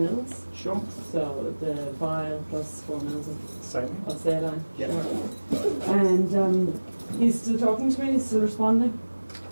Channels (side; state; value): both; inverted; correlation -1.00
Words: Sure. So the vial plus 4 mils Same. of saline. Yeah. Sure. And he's still talking to me. He's still responding.